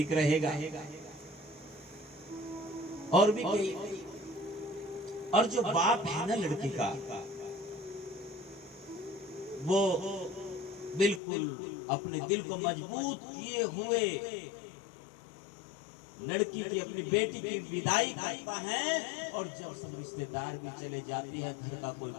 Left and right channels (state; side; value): drops out; right; at 11.2 s